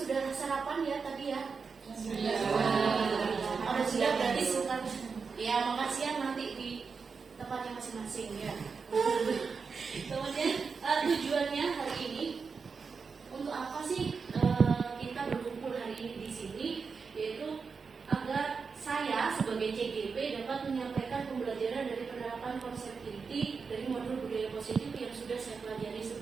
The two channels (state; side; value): quieter; left; 5.2 dB